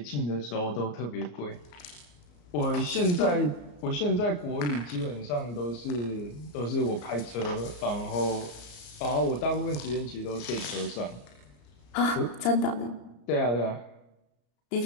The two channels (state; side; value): late; right; 34 ms